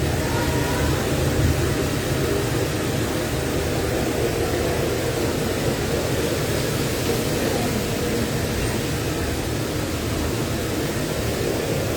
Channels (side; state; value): both; identical; correlation 1.00